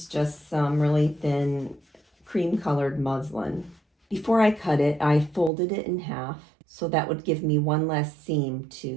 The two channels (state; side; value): drops out; left; at 5.5 s